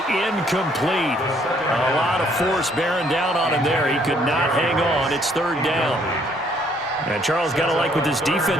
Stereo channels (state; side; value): normal; both; correlation 0.65